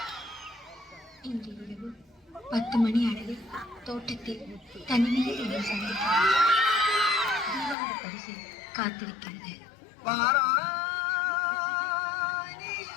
இன்று இரவு 10 மணி அளவில் தோட்டத்தில் தனிமையில் என்னை சந்தித்தார். தீபாவளி பரிசு காத்திருக்கிறது. வாராய் நீ,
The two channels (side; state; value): right; drops out; at 7.8 s